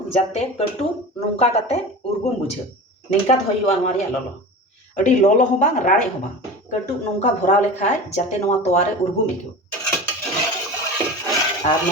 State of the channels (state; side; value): normal; both; correlation 0.32